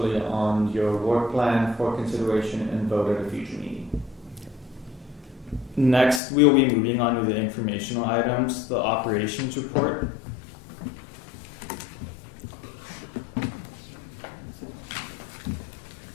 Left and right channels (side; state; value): right; drops out; at 6.2 s